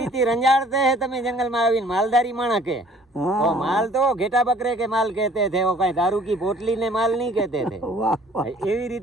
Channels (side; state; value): both; normal; correlation 0.54